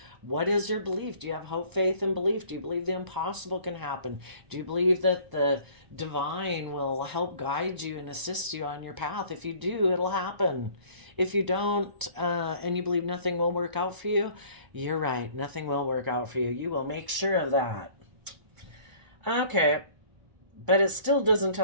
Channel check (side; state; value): left; late; 1.0 ms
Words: what is your belief? Do you have hope, faith, and belief? Do you believe the impossible can happen? Do you believe that the divine will help guide you and assist you on your path? If you do, it'll happen. If you don't, and you believe nothing will work out for you, you're right. Nothing will work out for you. You will make sure of that. Okay. But it still doesn't